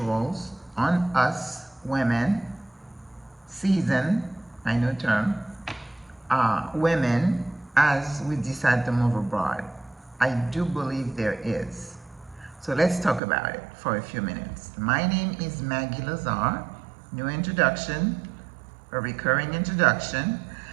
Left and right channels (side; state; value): left; drops out; at 13.2 s